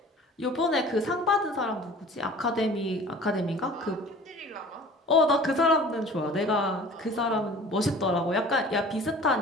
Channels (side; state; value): both; normal; correlation 0.45